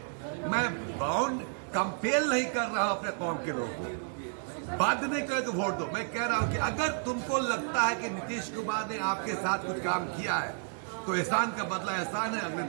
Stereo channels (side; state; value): left; silent; 56 dB below the other